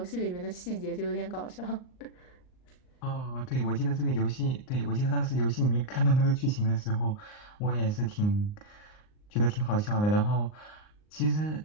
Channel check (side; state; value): right; late; 39 ms